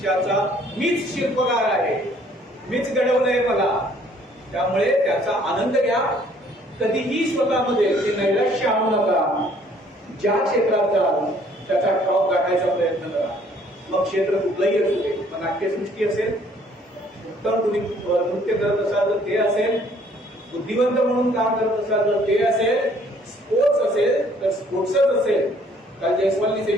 मीच शिल्पकार आहे, मीच घडवलंय मला. त्यामुळे त्याचा आनंद घ्या. कधीही स्वतःमध्ये ते नैराश्य आणू नका. ज्या क्षेत्रात जाल त्याचा टॉप गाठायचा प्रयत्न करा. मग क्षेत्र कुठलंही असू दे. मग नाट्यसृष्टी असेल, उत्तम तुम्ही नृत्य करत असाल तर ते असेल, बुद्धिवंत म्हणून काम करत असाल तर ते असेल, स्पोर्ट्स असेल तर स्पोर्ट्सच असेल. काल जयस्वालनी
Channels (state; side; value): normal; both; correlation 0.60